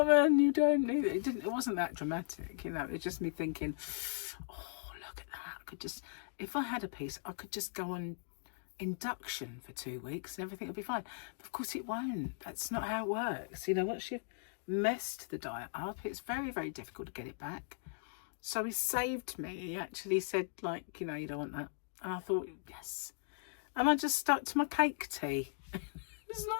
you don't need it. It wasn't that dramatic, you know. It was just me thinking, oh, look at that. I could just, if I had a piece, I could just go on induction for 2 weeks and everything would be fine. But of course it won't. That's not how it works. You know, once you've messed the diet up, it's very, very difficult to get it back. So he saved me. He actually said, like, you know, you don't want that. And I thought, yes. And I just stuck to my cake tea. It's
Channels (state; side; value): silent; right; digital silence